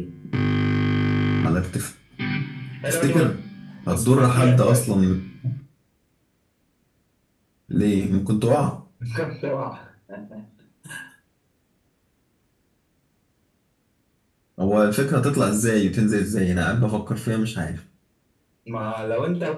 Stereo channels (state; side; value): identical; both; correlation 1.00